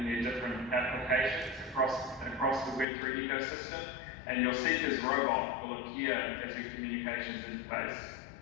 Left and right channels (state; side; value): drops out; right; at 2.9 s